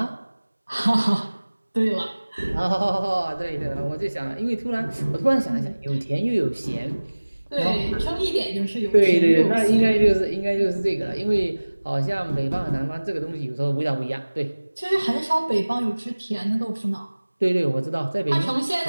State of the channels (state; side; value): inverted; both; correlation -1.00